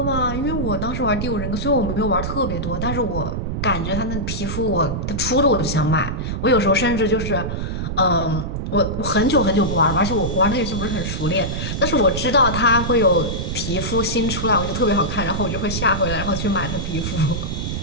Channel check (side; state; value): right; noise; rumble, 3 dB below the sound